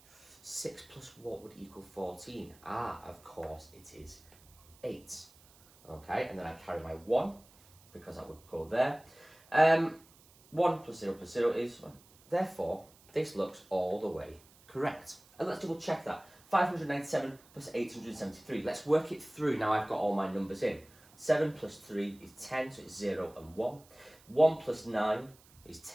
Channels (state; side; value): noise; right; hiss, 26 dB below the sound